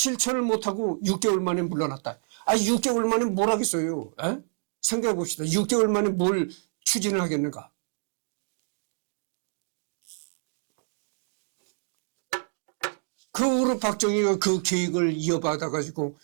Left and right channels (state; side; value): silent; left; digital silence